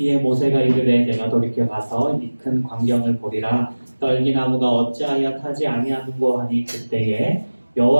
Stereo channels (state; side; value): inverted; both; correlation -1.00